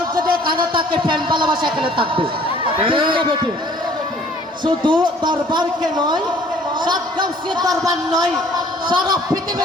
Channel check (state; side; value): normal; both; correlation 0.55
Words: যদি এখানে থাকে প্রেম ভালোবাসা এখানে থাকবে, ঠিক না বেটে? শুধু দরবারকে নয়, সাতগাঁওসের দরবার নয়, সারা